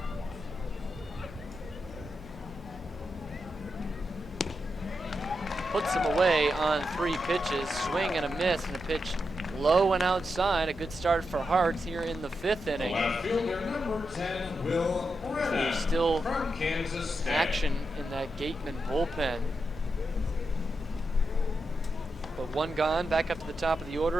Puts him away on 3 pitches, swing and a miss, and a pitch low and outside. A good start for Hart here in the 5th inning. Left fielder number 10, Will Brennan. There's still from Kansas State. action in that Gatemen bullpen. But one gone, back up to the top of the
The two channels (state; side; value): noise; left; hum, 18 dB below the sound